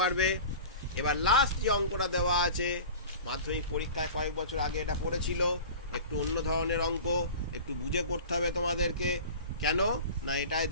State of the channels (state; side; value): inverted; both; correlation -0.37